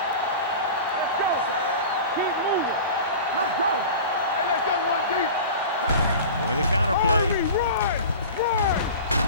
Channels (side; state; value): both; inverted; correlation -0.35